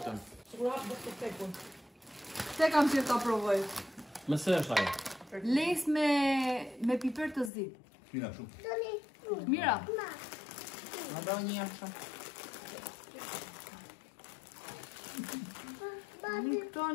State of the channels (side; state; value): right; drops out; at 7.5 s